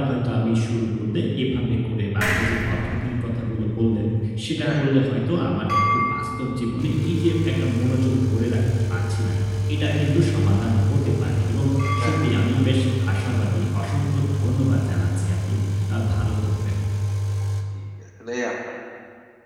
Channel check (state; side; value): identical; both; correlation 1.00